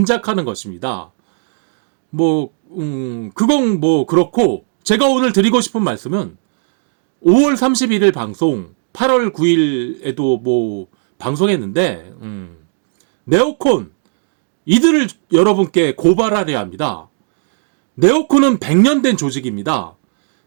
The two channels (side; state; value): left; silent; 62 dB below the other